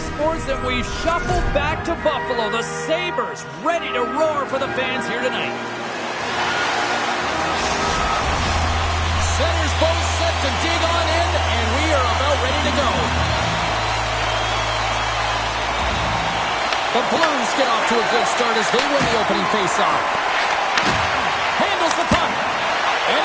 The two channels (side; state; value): both; identical; correlation 1.00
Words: Sports, and we've shuffled back to Buffalo. The Sabres ready to roar for the fans here tonight. Centers both set to dig on in, and we are about ready to go. The Blues get off to a good start as they win the opening faceoff. Handles the puck, and